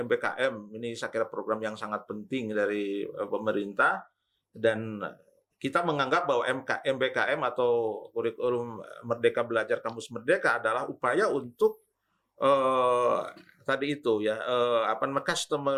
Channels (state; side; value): identical; both; correlation 1.00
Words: Ini saya kira program yang sangat penting dari pemerintah, dan kita menganggap bahwa MBKM atau kurikulum Merdeka Belajar Kampus Merdeka adalah upaya untuk tadi itu ya,